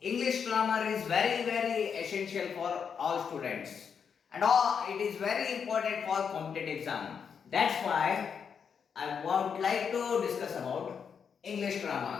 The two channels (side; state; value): right; quieter; 6.8 dB